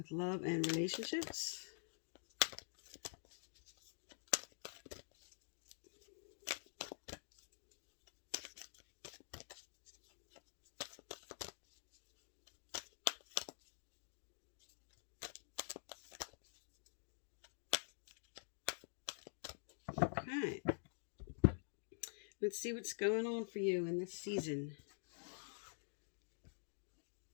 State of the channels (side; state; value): right; silent; digital silence